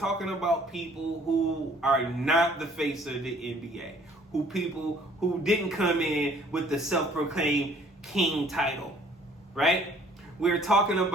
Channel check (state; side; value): normal; both; correlation 0.57